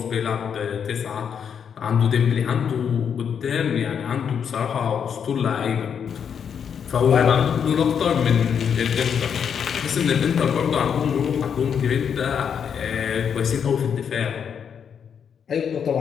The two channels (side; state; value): right; quieter; 7.5 dB